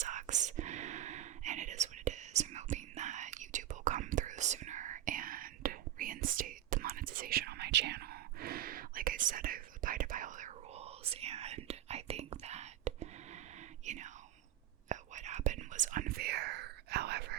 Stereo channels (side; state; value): left; quieter; 12.7 dB